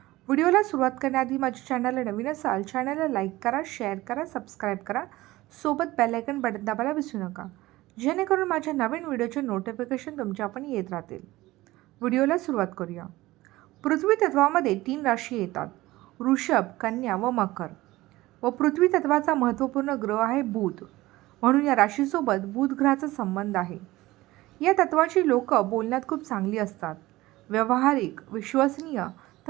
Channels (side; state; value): left; quieter; 18.3 dB